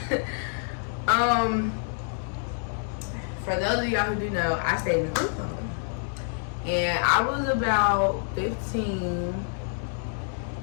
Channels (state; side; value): silent; right; 60 dB below the other